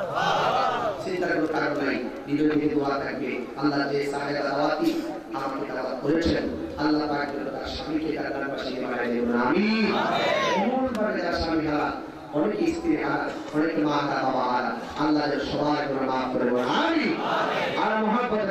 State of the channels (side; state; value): both; identical; correlation 1.00